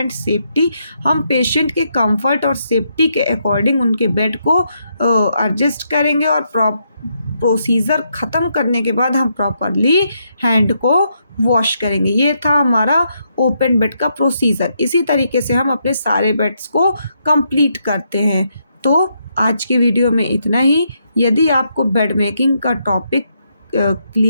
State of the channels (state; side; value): inverted; both; correlation -0.78